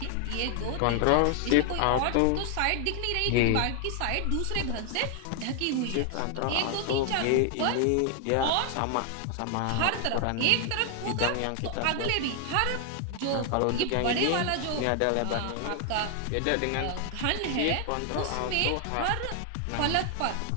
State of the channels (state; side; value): different; both; correlation 0.00